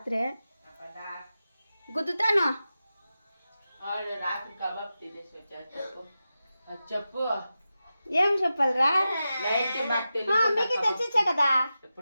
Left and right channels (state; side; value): inverted; both; correlation -0.92